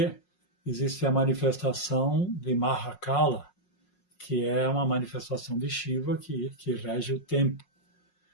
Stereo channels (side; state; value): right; late; 5.5 ms